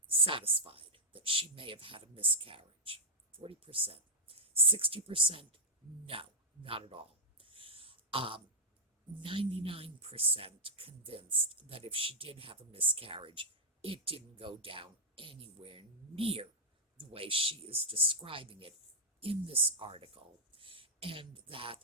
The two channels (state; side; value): normal; both; correlation -0.08